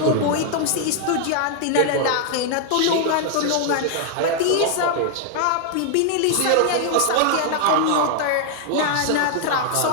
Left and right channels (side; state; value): both; different; correlation 0.00